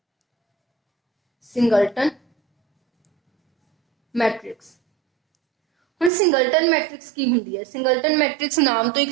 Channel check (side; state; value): left; drops out; at 6.1 s